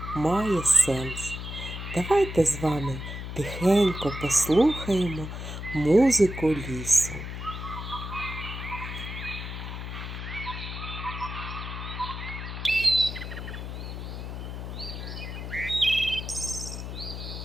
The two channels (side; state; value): left; noise; hum, 7 dB below the sound